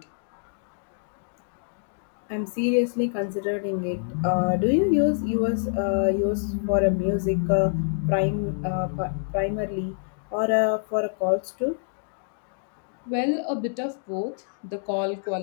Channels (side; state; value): right; silent; digital silence